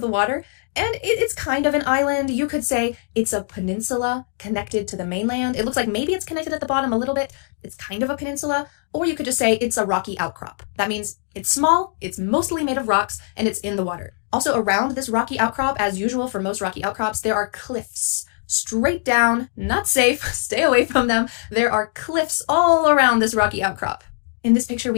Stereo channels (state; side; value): silent; right; 64 dB below the other